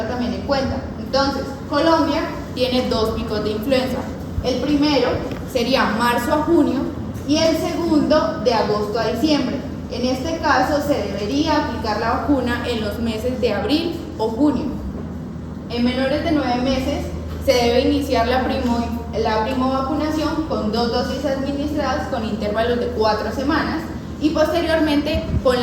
también en cuenta. Entonces, Colombia tiene 2 picos de influenza. El primero sería marzo a junio y el segundo de agosto a diciembre. En este caso se debería aplicar la vacuna en los meses de abril o junio. En menores de 9 meses se debe iniciar la primovacunación con 2 dosis administradas con intervalos de 4 semanas y posteriormente con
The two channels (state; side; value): identical; both; correlation 1.00